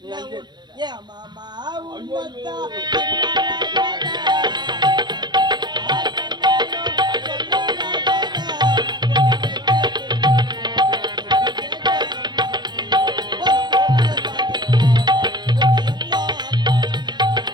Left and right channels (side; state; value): left; late; 0.21 ms